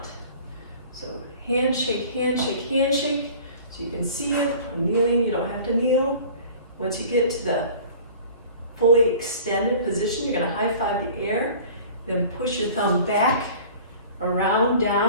So handshake, handshake, handshake. So you can see it. I'm kneeling, you don't have to kneel. Once you get to the fully extended position, you're going to high five the air, then push your thumb back, around,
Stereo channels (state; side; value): inverted; both; correlation -0.45